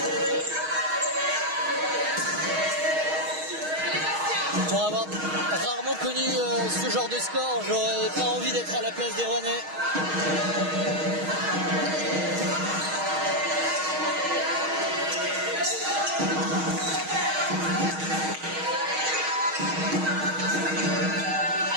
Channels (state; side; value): late; left; 6.4 ms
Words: Pour avoir rarement connu ce genre de score, j'aurais pas envie d'être à la place des Rouennais.